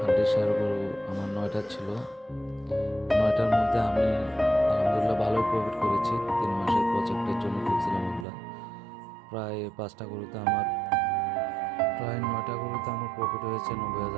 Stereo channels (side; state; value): left; drops out; at 8.2 s